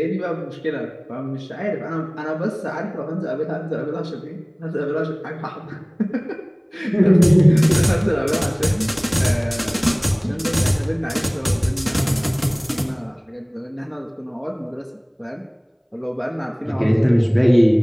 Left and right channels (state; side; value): identical; both; correlation 1.00